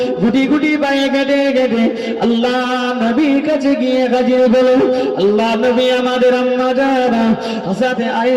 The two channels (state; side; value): identical; both; correlation 1.00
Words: গুটি গুটি পায়ে কেটে কেটে আল্লাহ নবীর কাছে গিয়ে হাজির হলো। আল্লাহ নবী আমাদের আম্মা জানা হযরত